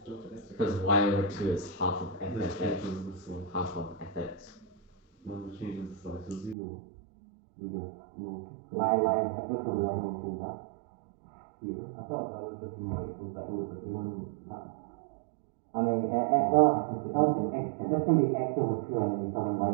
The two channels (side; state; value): left; drops out; at 6.6 s